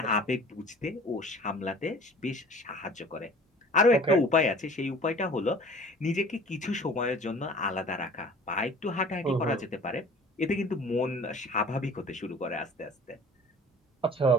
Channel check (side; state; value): both; normal; correlation 0.46